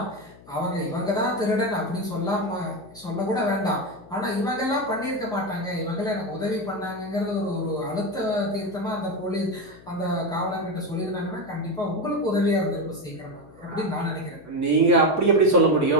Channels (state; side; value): noise; left; hum, 22 dB below the sound